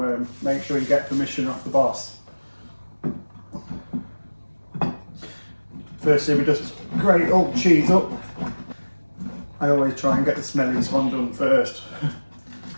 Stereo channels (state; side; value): inverted; both; correlation -1.00